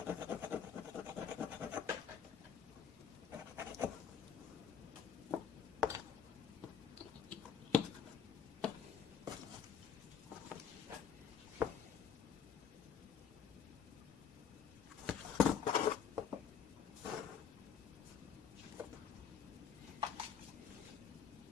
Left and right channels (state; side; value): quieter; right; 7.5 dB